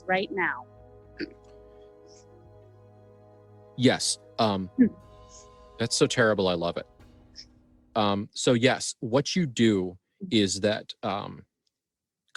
right now. Yes. That's so terrible. I love it. So yes, what you do is that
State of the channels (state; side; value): identical; both; correlation 1.00